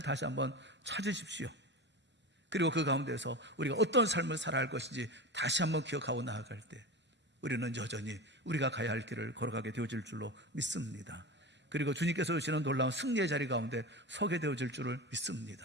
한번 찾으십시오. 그리고 그 가운데서 우리가 어떤 삶을 살아야 할 것인지 다시 한번 기억하고 나아갈 때 우리는 여전히 우리가 가야 할 길을 걸어가게 되어질 줄로 믿습니다. 그리고 주님께서 주시는 놀라운 승리의 자리 가운데 서게 되어질 줄을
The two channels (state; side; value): normal; both; correlation 0.26